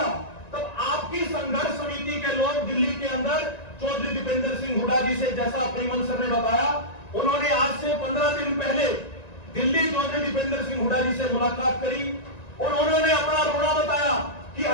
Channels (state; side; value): late; right; 1.9 ms